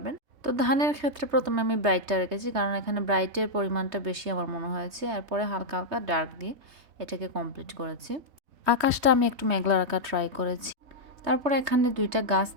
তো ধানের ক্ষেত্রে প্রথমে আমি ব্রাইটটা রেখেছি, কারণ এখানে ব্রাইটের পরিমাণটা বেশি আমার মনে হয়েছে। এরপরে হালকা হালকা ডার্ক দিয়ে এটাকে কমপ্লিট করেছি। আকাশটা আমি একটু মেঘলা রাখা ট্রাই করেছি। তারপরে এখানে দুইটা গাছ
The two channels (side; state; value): left; late; 3.2 ms